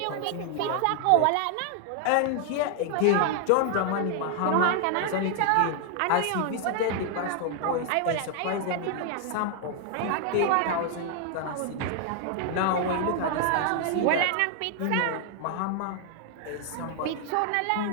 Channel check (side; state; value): both; different; correlation 0.00